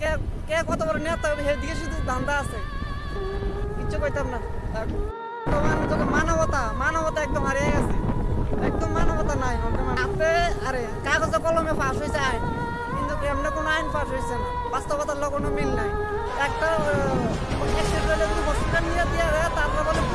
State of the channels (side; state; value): both; identical; correlation 1.00